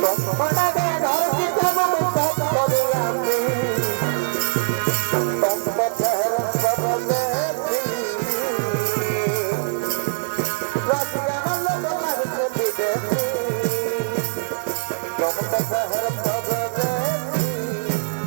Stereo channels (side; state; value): left; silent; digital silence